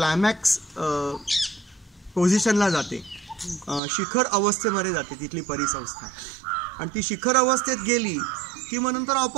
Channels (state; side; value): drops out; left; at 3.8 s